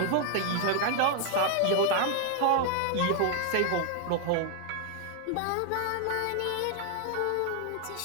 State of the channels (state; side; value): different; both; correlation 0.00